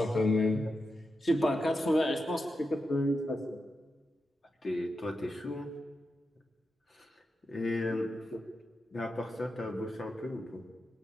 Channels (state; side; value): normal; both; correlation 0.88